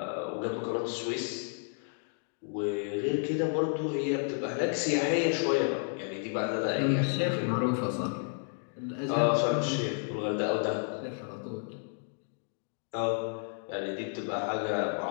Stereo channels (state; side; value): silent; right; 57 dB below the other